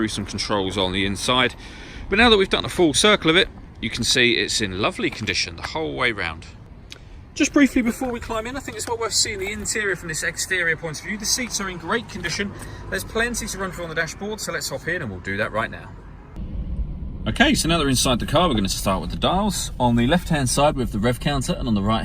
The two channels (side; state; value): both; identical; correlation 1.00